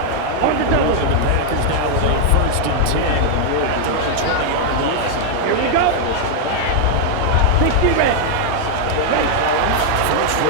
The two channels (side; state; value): both; different; correlation 0.00